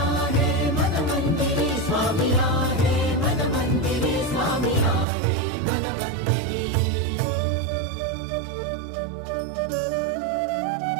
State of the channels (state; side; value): drops out; left; at 5.1 s